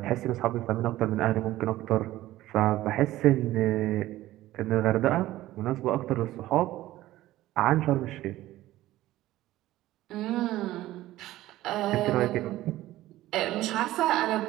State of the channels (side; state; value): left; quieter; 15.6 dB